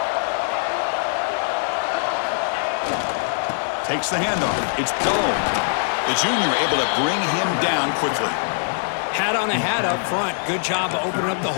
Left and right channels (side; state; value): right; silent; 60 dB below the other